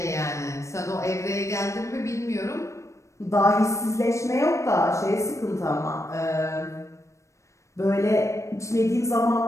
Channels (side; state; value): right; late; 0.15 ms